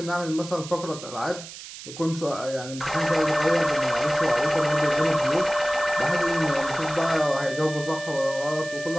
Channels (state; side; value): noise; right; hiss, 13 dB below the sound